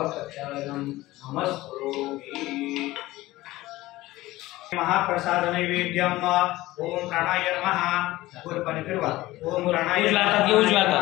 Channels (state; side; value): quieter; right; 17.9 dB